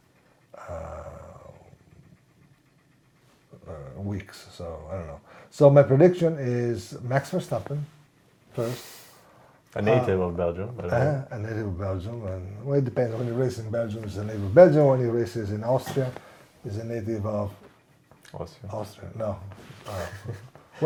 weeks. So I don't know. So my prediction is Max Verstappen first. A native of Belgium. A native of Belgium, and it depends. When he races in Belgium, he's a native of Belgium. When he races in Austria, he's a native of Austria. No.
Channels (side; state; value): both; identical; correlation 1.00